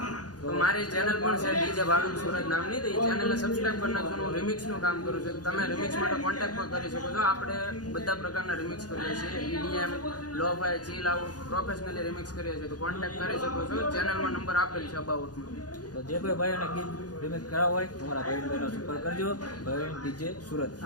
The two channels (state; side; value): late; right; 0.69 ms